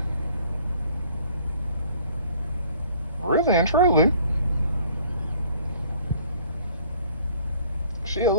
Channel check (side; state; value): both; inverted; correlation -0.54